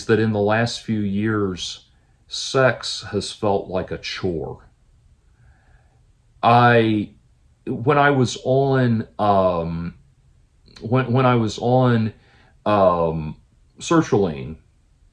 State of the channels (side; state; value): both; identical; correlation 1.00